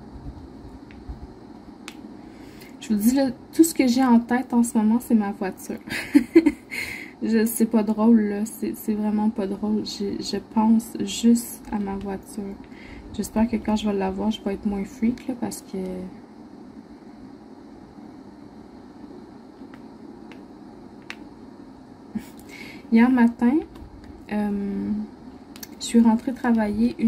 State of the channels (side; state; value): both; identical; correlation 1.00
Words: Je vous dis, là, tout ce que j'ai en tête en ce moment, c'est ma voiture. C'est pas drôle, là. C'est vraiment pas drôle. Je pense juste à ma voiture. J'espère que quand je vais l'avoir, je vais être moins freak, là, parce que... Hier matin, je suis rentrée travailler